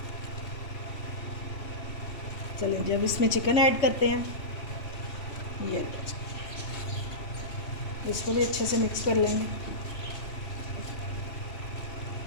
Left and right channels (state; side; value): late; right; 3.1 ms